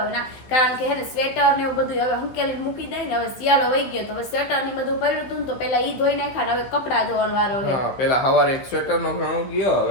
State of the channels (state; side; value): late; right; 15 ms